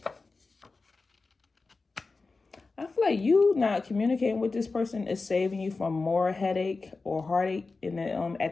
I feel like you not communicating with this person is saving you from more headache or heartache in the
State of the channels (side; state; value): right; quieter; 3.9 dB